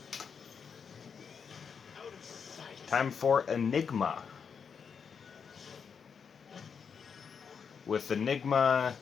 Time for Enigma. With Enigma,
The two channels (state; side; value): quieter; right; 6.5 dB